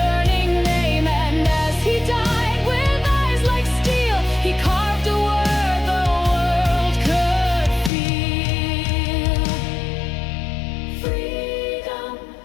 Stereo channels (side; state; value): right; drops out; at 7.9 s